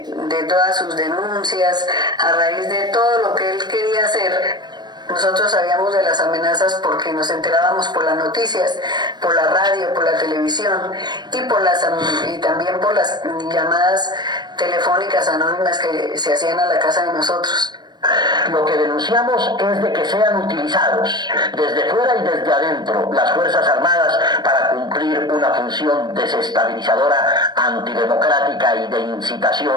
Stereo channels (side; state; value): left; late; 0.20 ms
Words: todas sus denuncias, a raíz de todo lo que él quería hacer. Nosotros sabíamos de las amenazas porque nos enterábamos por las noticias, por la radio, por la televisión y también por las llamadas telefónicas anónimas que se hacían a la casa de nosotros. Lo que denunciamos es de que sean utilizados desde fuera y desde adentro las Fuerzas Armadas para cumplir una función desestabilizadora, antidemocrática y de